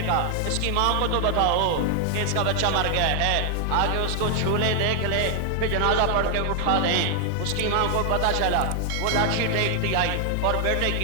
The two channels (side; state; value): both; different; correlation 0.00